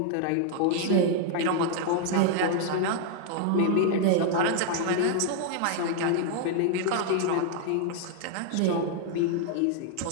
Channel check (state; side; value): different; both; correlation 0.00